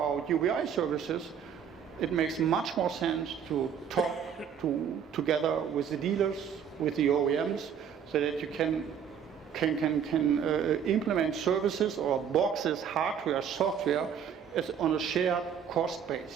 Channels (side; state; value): left; quieter; 7.9 dB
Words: UBI services, it makes much more sense to talk together with the dealers, with the OEMs, so that you can implement services or boxes, hardware, software, as on a shared cost